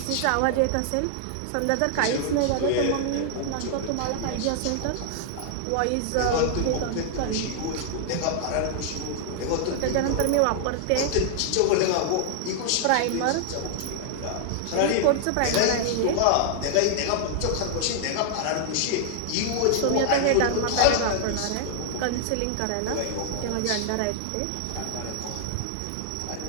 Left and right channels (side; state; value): both; different; correlation -0.01